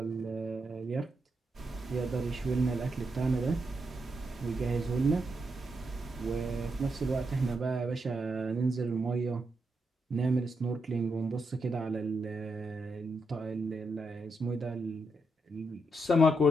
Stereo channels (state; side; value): normal; both; correlation 0.82